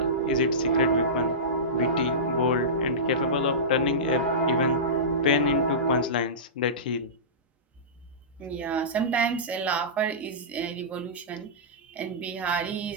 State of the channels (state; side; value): normal; both; correlation -0.19